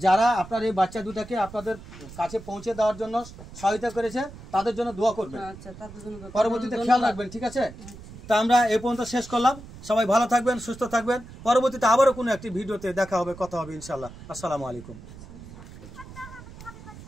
যারা আপনার এই বাচ্চা দুটাকে আপনাদের কাছে পৌঁছে দেওয়ার জন্য সহায়তা করেছে তাদের জন্য দোয়া করবেন। পরবর্তীতে খেয়াল রাখবেন, ঠিক আছে? তা আমরা এই পর্যন্ত শেষ করলাম। সবাই ভালো থাকবেন, সুস্থ থাকবেন। পরবর্তীতে আবারও কোনো একটি ভিডিওতে দেখা হবে, কথা হবে ইনশাল্লাহ। আসসালামু আলাইকুম।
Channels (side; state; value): right; noise; rumble, 16 dB below the sound